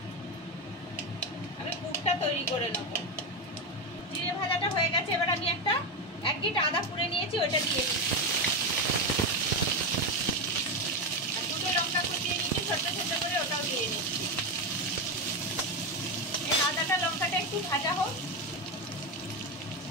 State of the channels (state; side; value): normal; both; correlation 0.13